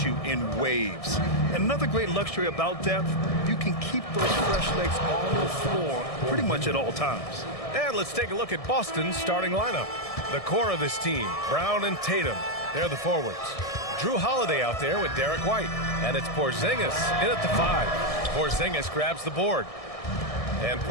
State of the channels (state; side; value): late; right; 1.6 ms